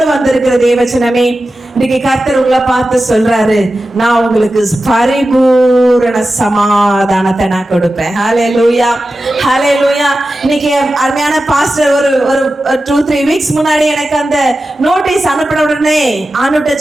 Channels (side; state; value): both; normal; correlation 0.93